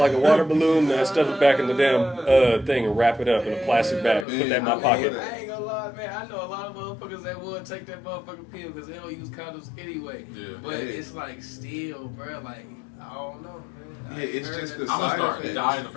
a water balloon, and I stuff it back in the damn thing and wrap it up in a plastic bag. Put that in my pocket. I ain't gonna lie, man. I know a lot of motherfuckers that would take that motherfucking pill because they don't use condoms anyway. Yeah. But it's like still, bro. Like I don't know, man. Yeah, it's just the I'm gonna side start effects. dying the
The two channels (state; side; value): drops out; right; at 4.2 s